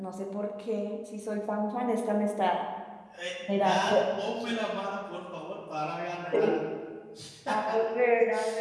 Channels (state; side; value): identical; both; correlation 1.00